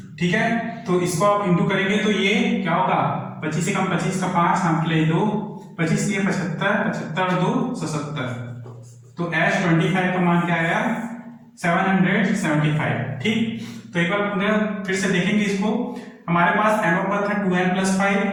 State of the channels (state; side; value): identical; both; correlation 1.00